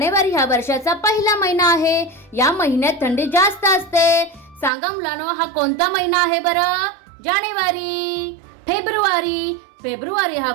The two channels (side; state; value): left; drops out; at 4.7 s